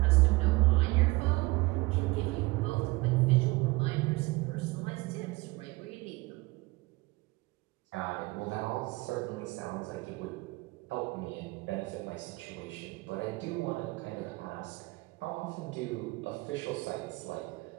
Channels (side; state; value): left; quieter; 22.8 dB